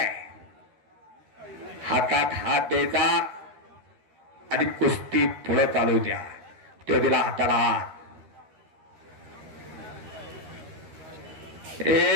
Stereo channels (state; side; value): late; left; 13 ms